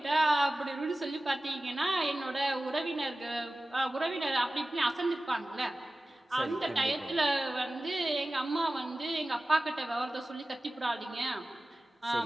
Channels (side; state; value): both; normal; correlation 0.96